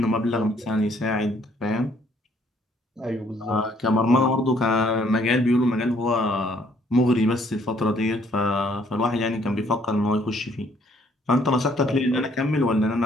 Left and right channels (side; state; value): both; normal; correlation 0.64